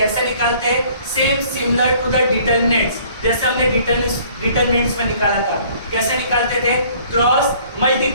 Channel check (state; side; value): inverted; both; correlation -0.56